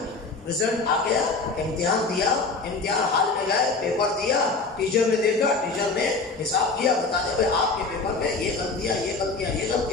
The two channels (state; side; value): quieter; right; 4.0 dB